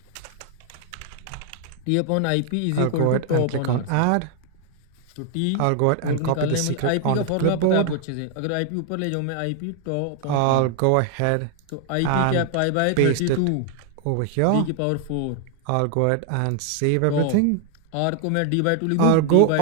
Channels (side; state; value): both; different; correlation 0.00